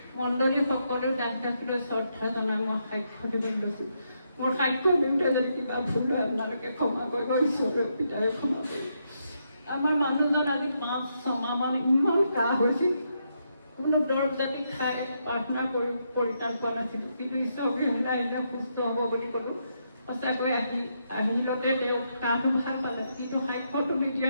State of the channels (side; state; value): both; inverted; correlation -0.80